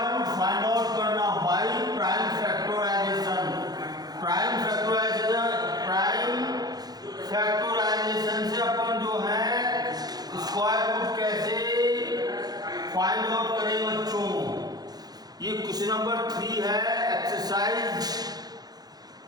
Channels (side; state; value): left; late; 0.19 ms